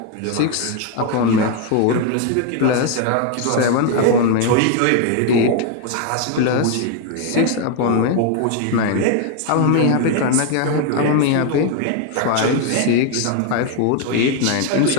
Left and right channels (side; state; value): both; different; correlation 0.01